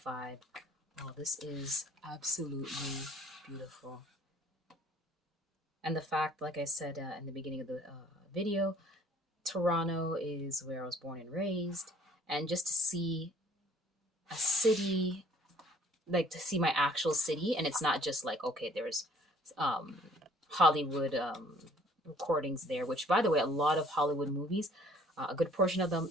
vibe. Oh, this is absolutely beautiful. And the fact, like I said in the beginning of the video, Toronto is where I was born and raised. And just to see a city, like to see my actual city, and it's not just like, okay, there's um, Hollywood recordings there, which, by the way, a lot of Hollywood movies, a good portion of them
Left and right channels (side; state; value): both; normal; correlation 0.57